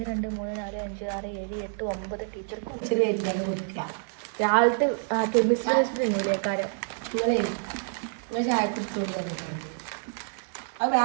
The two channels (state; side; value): silent; left; digital silence